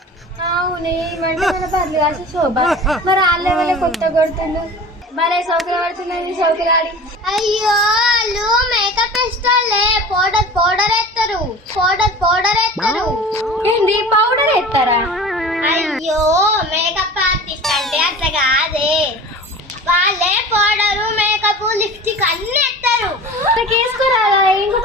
అవునే, మన పర్లు కాదు శోభ. మరి ఆ లెవెల్ కొత్త కొడుతుండు, మరే సౌకర్యం పడుతున్నది సౌకర్యాలు. అయ్యో వాళ్ళు మేకప్ వేస్తారులే, పౌడర్ ఎత్తారు. ఏంది పౌడర్ ఎత్తారా? అయ్యో మేకప్ ఆర్టిస్ట్ అంటే అట్లా కాదే, వాళ్ళే పౌడరు మేకప్ లిప్స్టిక్ అన్ని ఎత్తారు. వేసుకోరాదా? ఇంకో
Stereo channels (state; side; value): normal; both; correlation 0.38